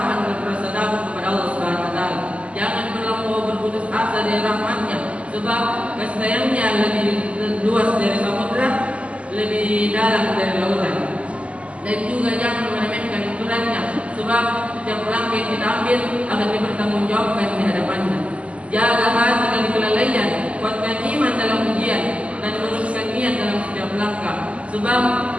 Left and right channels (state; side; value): late; left; 0.062 ms